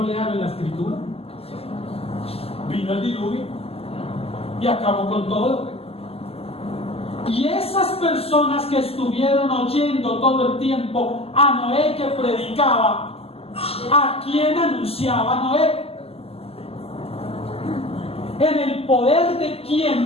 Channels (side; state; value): right; late; 0.29 ms